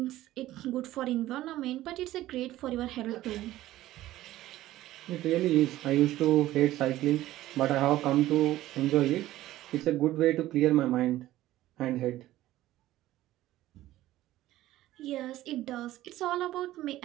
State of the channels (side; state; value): left; quieter; 15.2 dB